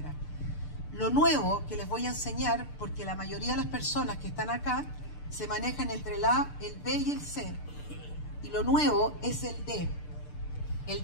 Lo nuevo que les voy a enseñar, porque la mayoría de las personas que están acá se manejan entre el A, el B y el C. Y lo nuevo es el D.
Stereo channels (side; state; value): right; late; 6.8 ms